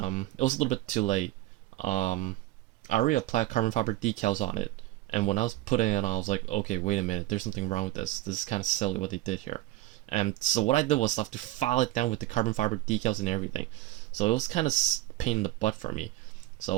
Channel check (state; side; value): quieter; left; 16.8 dB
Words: was a little bit too late. I already applied carbon fiber decals on it. And when I was putting it on, I was like, okay, wait a minute, there's something wrong with this. This is kind of silly what they did here. And so what I did was I have to file it down with the carbon fiber decals and everything. So it was kind of pain in the butt for me.